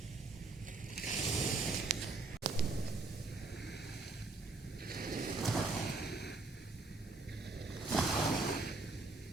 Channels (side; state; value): left; quieter; 3.6 dB